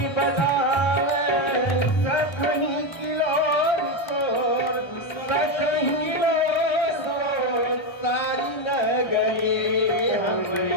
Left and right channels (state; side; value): late; right; 1.3 ms